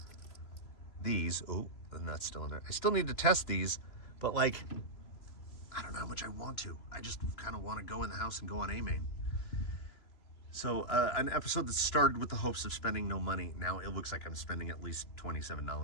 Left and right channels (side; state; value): right; late; 3.0 ms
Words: these. Oh, and that's still in there. I still need to test these, but like, I don't know how much I want to. I just kind of want to go in the house and go on A-main. So an episode that started with the hopes of spending no money. Now it looks like I'm spending at least